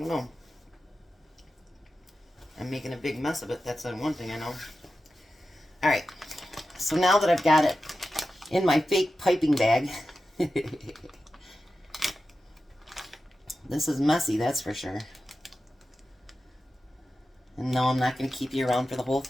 know. I'm making a big mess of it. That's the one thing I know. Alright. So now that I've got it in my fake piping bag... This is messy, that's for sure. And no, I'm not going to keep you around for the whole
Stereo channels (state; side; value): normal; both; correlation 0.92